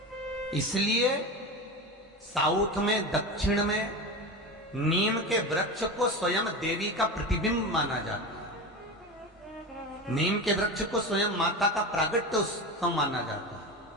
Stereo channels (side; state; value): both; normal; correlation 0.25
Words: इसलिए साउथ में, दक्षिण में नीम के वृक्ष को स्वयं देवी का प्रतिबिंब माना जाता है। नीम के वृक्ष को स्वयं माता का प्रागट्य उत्सव माना जाता है।